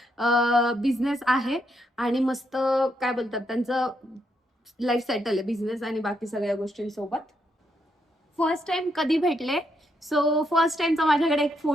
बिझनेस आहे आणि मस्त काय बोलतात त्यांचं लाईफ सेटल आहे बिझनेस आणि बाकी सगळ्या गोष्टींसोबत. फर्स्ट टाइम कधी भेटले? सो फर्स्ट टाइमचा माझ्याकडे एक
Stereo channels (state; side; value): normal; both; correlation 0.78